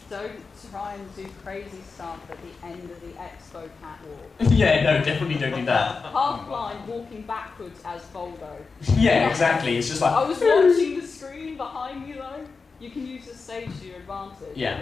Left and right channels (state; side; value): quieter; right; 4.6 dB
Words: Don't try and do crazy stuff at the end of the expo catwalk. Yeah, no, definitely don't do that. Half blind, walking backwards as Voldo. Yeah, exactly. It's just like... I was watching the screen behind me though. You can use the stage to your advantage. Yeah.